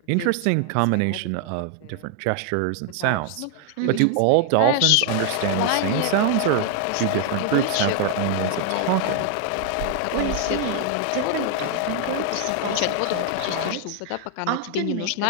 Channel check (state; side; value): different; both; correlation 0.00